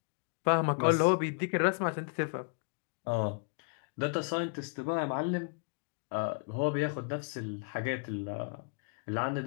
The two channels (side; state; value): right; quieter; 38.8 dB